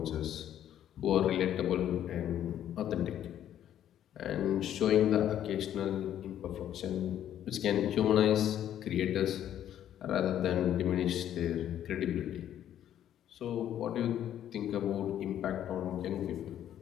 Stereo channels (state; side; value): quieter; right; 10.9 dB